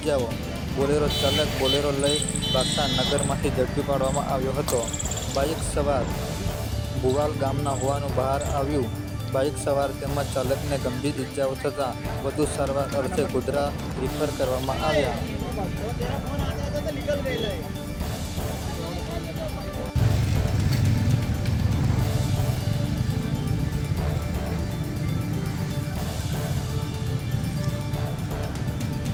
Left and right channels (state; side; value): identical; both; correlation 1.00